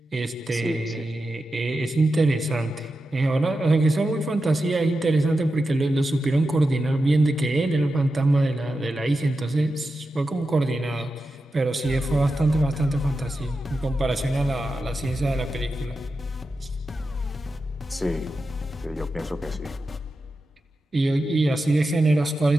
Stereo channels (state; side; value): normal; both; correlation 0.90